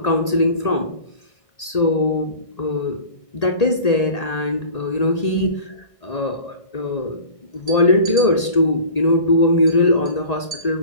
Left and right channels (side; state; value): right; late; 1.8 ms